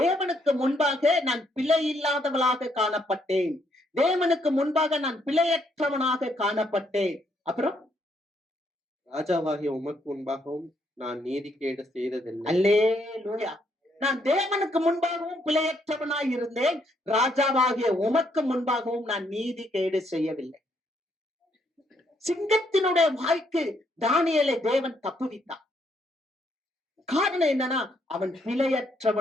முன்பாக நான் பிழை இல்லாதவளாக காணப்பட்டேன். தேவனுக்கு முன்பாக நான் பிழையற்றவனாக காணப்பட்டேன். அப்புறம் ராஜாவாகிய உமக்கு முன்பாகவும் நான் நீதிகேடு செய்ததில்லை. அல்லேலூயா. நான் தேவனுக்கு முன்பாகவும் பிழையற்றவனாய் இருந்தேன். ராஜாவாகிய உமக்கு முன்பாகவும் நான் நீதி கேடு செய்யவில்லை. சிங்கத்தினுடைய வாய்க்கு தானியேலை தேவன் தப்புவித்தார். காரணம் என்னன்னா, அவன்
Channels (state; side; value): normal; both; correlation 0.73